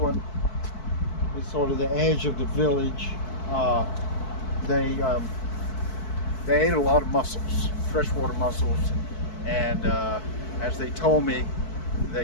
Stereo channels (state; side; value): late; right; 4.6 ms